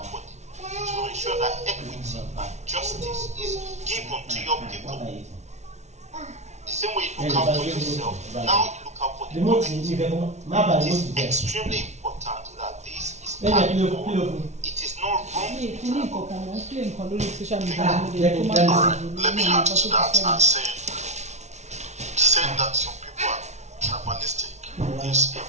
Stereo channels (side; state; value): left; late; 0.32 ms